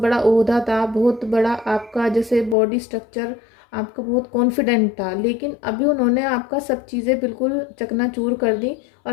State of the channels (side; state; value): right; drops out; at 2.6 s